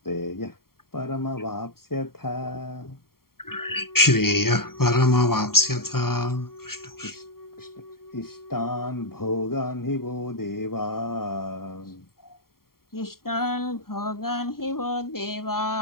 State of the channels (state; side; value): late; right; 0.93 ms